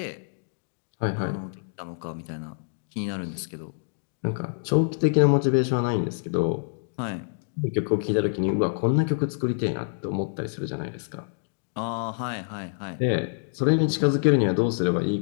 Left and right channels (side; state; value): right; silent; digital silence